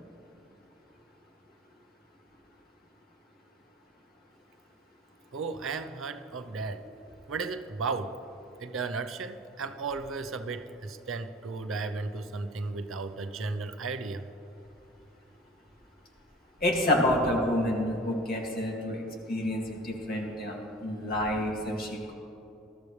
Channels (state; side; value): normal; both; correlation 0.41